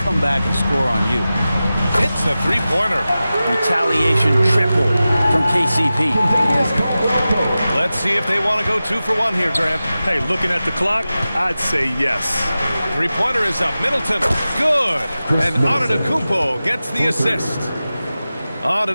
back and score on you. It's a three-pointer. Retaliation triple from KCP. Let's see if they want to go 2 for 1 here, Grant. Hey, looking at the clock, I'd say yes. Three-pointer is up. Middleton, good. And Antetokounmpo gets the assist.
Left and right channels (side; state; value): both; inverted; correlation -0.95